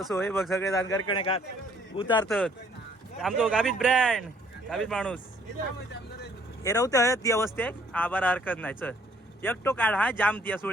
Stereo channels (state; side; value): normal; both; correlation 0.63